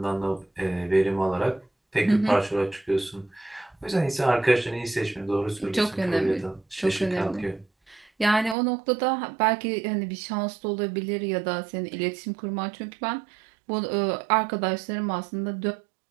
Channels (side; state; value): left; drops out; at 8.6 s